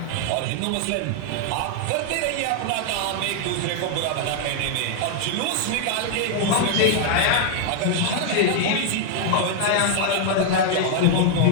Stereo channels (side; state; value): both; different; correlation 0.00